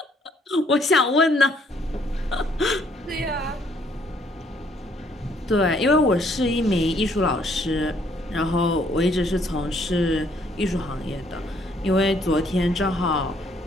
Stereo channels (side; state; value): both; normal; correlation 0.66